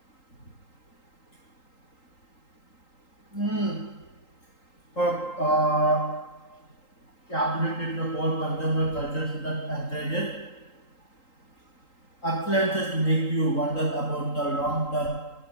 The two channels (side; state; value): right; late; 3.8 ms